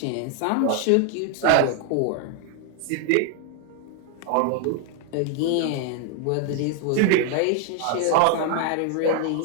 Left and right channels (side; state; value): both; different; correlation 0.00